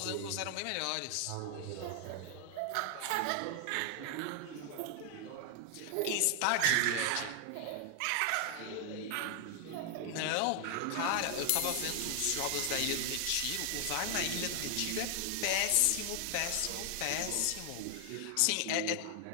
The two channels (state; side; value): different; both; correlation 0.00